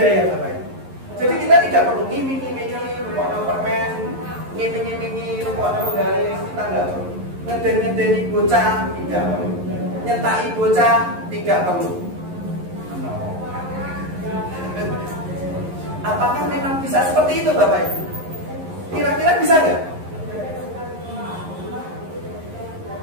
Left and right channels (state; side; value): late; left; 11 ms